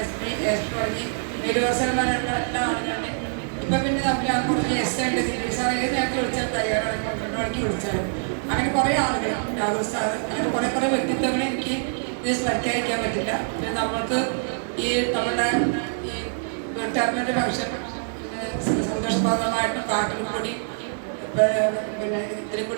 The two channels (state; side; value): silent; left; digital silence